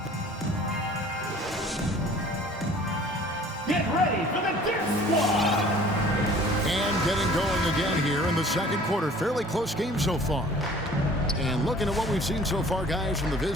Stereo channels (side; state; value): both; normal; correlation 0.50